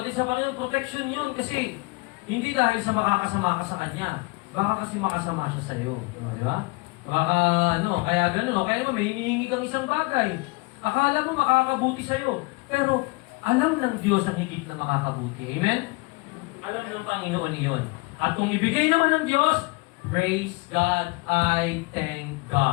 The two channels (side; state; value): right; quieter; 26.2 dB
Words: sa Panginoon, protection yon kasi hindi dahil sa makakasama ka sa Kanya. Baka kasi makasama siya sa iyo. No, di ba? Baka, kaya gano'n. Kaya naman, may hinihingi kang isang bagay. Akala mo makakabuti sa iyo. Pero, alam ng Diyos ang higit na makakabuti. Amen? Alam ng Panginoon iyon. At kung ibigay naman ng Diyos, praise God, I thank